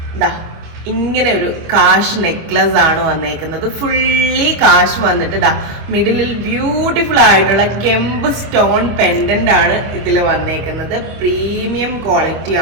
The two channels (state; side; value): late; left; 25 ms